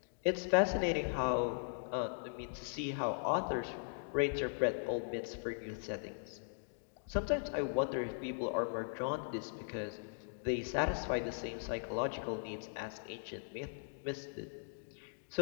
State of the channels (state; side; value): silent; right; digital silence